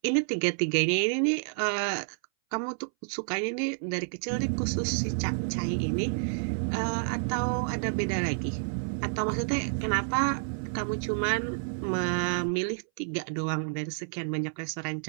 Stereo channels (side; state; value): left; silent; 58 dB below the other